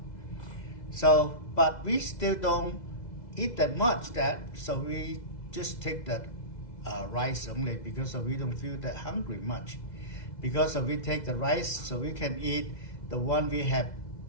So, but we still don't eat that much so we just take that rice only because we don't feel that hungry much. Because we take the rice, so we can eat the one we have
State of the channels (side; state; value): right; late; 2.0 ms